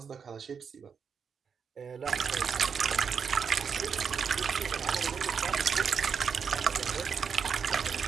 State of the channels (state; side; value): quieter; left; 6.5 dB